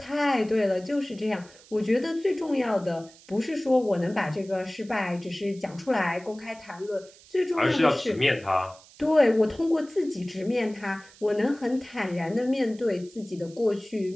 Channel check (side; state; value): right; noise; hiss, 24 dB below the sound